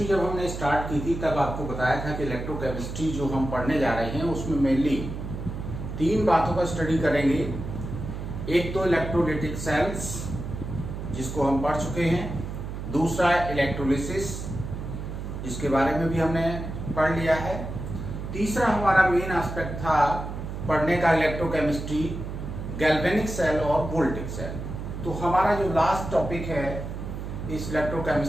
जब हमने स्टार्ट की थी तब आपको बताया था कि इलेक्ट्रोकेमिस्ट्री जो हम पढ़ने जा रहे हैं उसमें मेनली तीन बातों का स्टडी करेंगे। एक तो इलेक्ट्रोलाइटिक सेल्स जिसको हम पढ़ चुके हैं, दूसरा इलेक्ट्रोलिसिस जिसके बारे में भी हमने पढ़ लिया है, तीसरा हमारा मेन एस्पेक्ट था पढ़ने का इलेक्ट्रोकेमिस्ट्री गैल्वेनिक सेल और वोल्टिक सेल। तो हमारा जो लास्ट टॉपिक है इस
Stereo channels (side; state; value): right; noise; hum, 7 dB below the sound